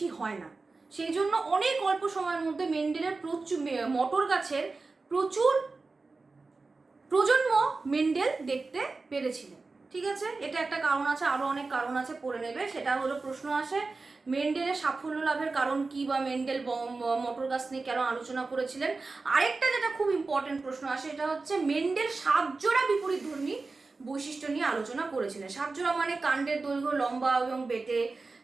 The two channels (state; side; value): quieter; left; 3.8 dB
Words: হয় না, সেই জন্য অনেক অল্প সময়ের মধ্যে মেন্ডেলের মটর গাছের প্রচুর প্রজন্ম মেন্ডেল দেখতে পেরেছিলেন। ঠিক আছে, এটা একটা কারণ আছে, আরো অনেক কারণ আছে, পড়ে নেবে। সেটা হলো প্রশ্ন আসে মেন্ডেলের সাফল্য লাভের কারণ কি, বা মেন্ডেল মটর গাছ নিয়ে কেন আলোচনা করেছিলেন। আরেকটা যেটা খুব ইম্পর্টেন্ট প্রশ্ন আসে, এটা হচ্ছে মেন্ডেল 7 জোড়া বিপরীতধর্মী বৈশিষ্ট্য নিয়ে আলোচনা করেছিলেন। 7 জোড়া মানে কাণ্ডের দৈর্ঘ্য লম্বা এবং বেটে,